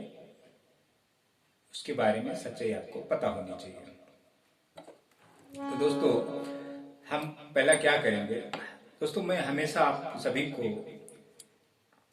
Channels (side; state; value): both; identical; correlation 1.00